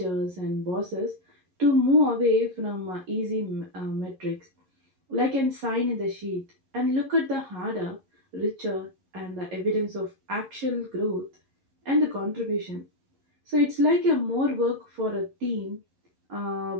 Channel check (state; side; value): late; left; 11 ms